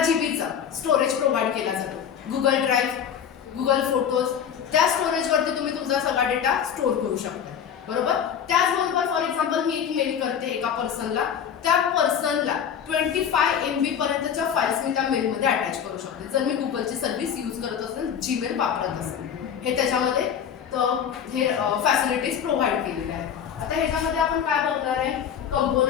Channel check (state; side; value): quieter; right; 8.3 dB